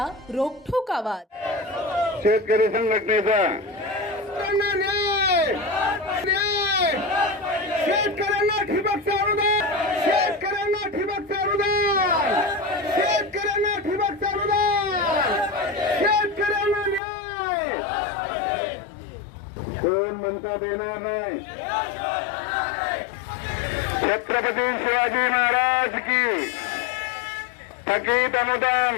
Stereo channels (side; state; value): right; drops out; at 17.0 s